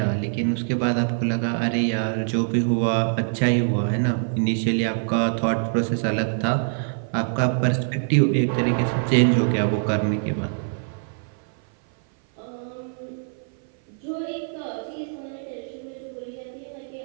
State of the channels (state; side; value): silent; left; 56 dB below the other